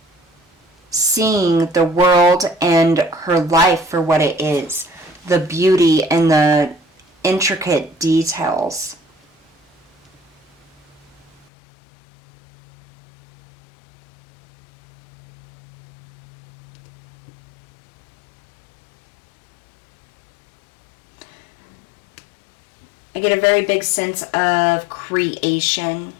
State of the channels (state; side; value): drops out; right; at 11.5 s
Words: Seeing the world and her life for what it is, the beauty and the intricate details. I get a very big sense of creation,